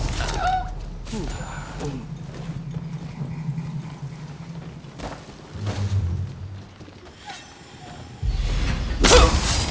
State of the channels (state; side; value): identical; both; correlation 1.00